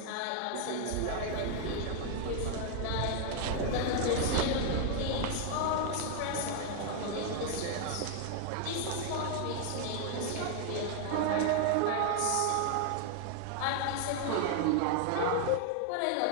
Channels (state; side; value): different; both; correlation 0.00